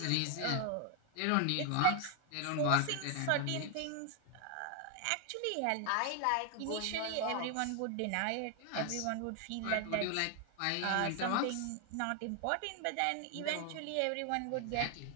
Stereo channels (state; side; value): different; both; correlation 0.00